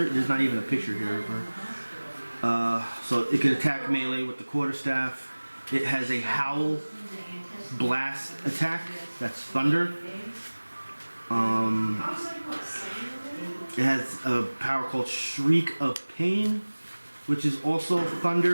not even a picture here of her. So it can attack melee with the quarterstaff. It has a howl blast attack. That's thunder. It has a power called Shriek of Pain, which is also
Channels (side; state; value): both; inverted; correlation -1.00